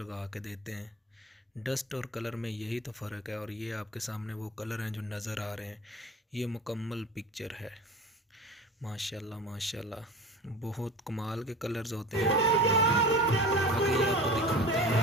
के देते हैं। डस्ट और कलर में यही तो फ़र्क है। और ये आपके सामने वो कलर हैं जो नज़र आ रहे हैं। ये मुकम्मल पिक्चर है। माशाल्लाह माशाल्लाह, बहुत कमाल के कलर्स होते हैं। आगे ये आपको दिखाते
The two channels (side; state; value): both; normal; correlation 0.36